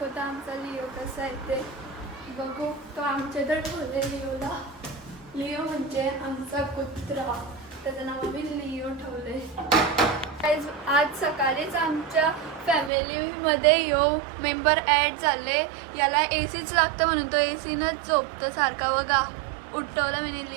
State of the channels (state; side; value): drops out; left; at 12.9 s